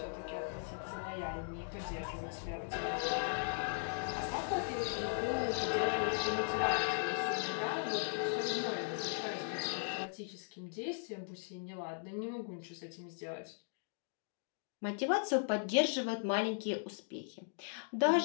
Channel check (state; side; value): silent; right; digital silence